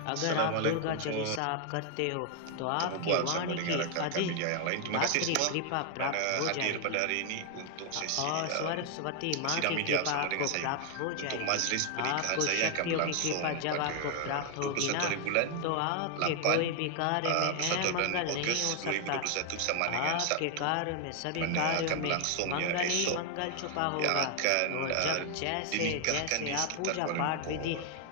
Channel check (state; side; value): different; both; correlation 0.00